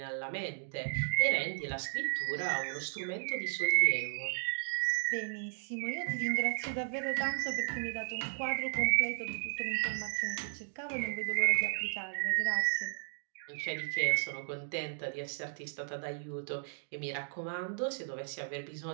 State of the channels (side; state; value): left; silent; digital silence